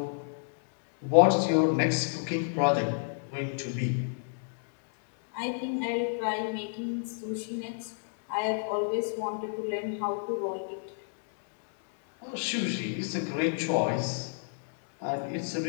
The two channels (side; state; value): right; silent; digital silence